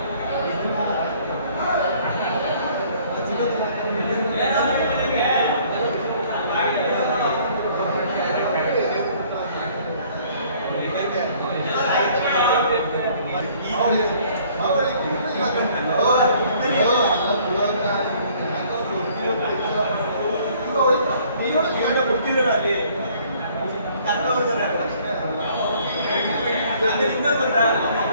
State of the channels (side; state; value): both; inverted; correlation -0.58